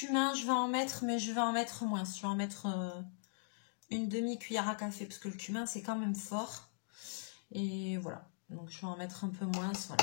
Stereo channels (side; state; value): right; silent; digital silence